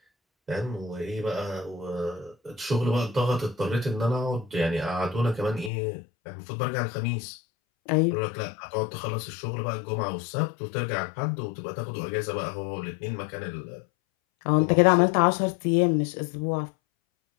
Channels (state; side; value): drops out; right; at 5.7 s